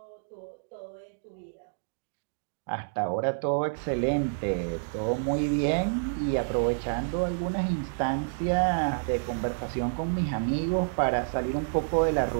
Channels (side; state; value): left; silent; digital silence